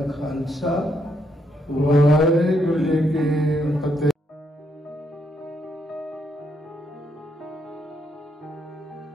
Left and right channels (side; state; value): both; normal; correlation 0.76